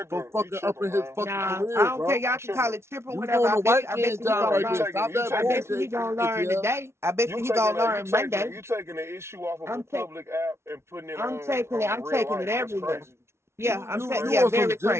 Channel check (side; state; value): left; late; 0.13 ms